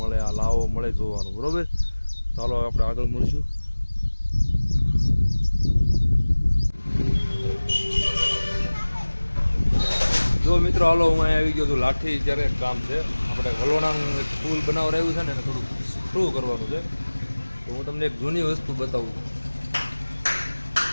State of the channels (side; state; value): both; inverted; correlation -1.00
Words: આ લાવો મળે જોવાનું. બરાબર, ચાલો આપણે આગળ મળશું. જો મિત્રો હાલો, હું અહીંયા આવી ગયો છું લાઠી. જ્યારે કામ છે આપણે વલોણાનું એક પુલ બનાવરાયું છે ને એને થોડું થ્રુ કરવાનું છે. તો હું તમને એક જૂની વસ્તુ બતાવું.